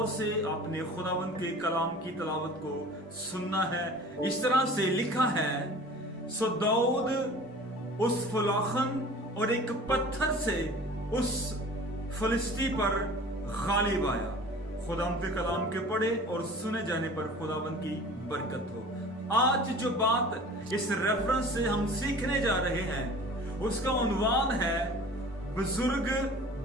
से आपने खुदावंद के कलाम की तिलावत को सुनना है। इस तरह से लिखा है, सो दाऊद उस फुलाखन और एक पत्थर से उस फलिस्ती पर गालिब आया। खुदावंद के कलाम के पढ़े और सुने जाने पर खुदावंद की बरकत हो। आज जो बात इस रेफरेंस से हम सीखने जा रहे हैं उसका उन्वान है बुजुर्ग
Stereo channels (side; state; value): both; normal; correlation 0.43